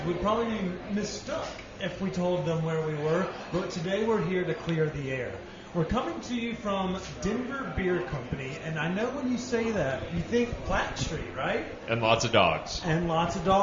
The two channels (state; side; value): identical; both; correlation 1.00